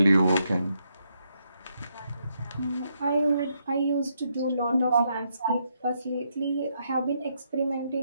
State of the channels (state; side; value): inverted; both; correlation -0.78